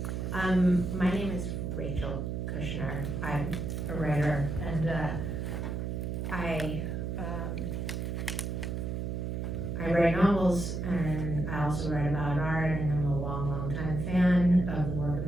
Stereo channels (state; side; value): noise; right; hum, 3 dB below the sound